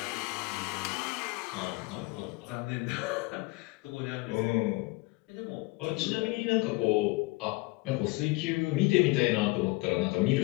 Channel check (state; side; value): quieter; right; 23.7 dB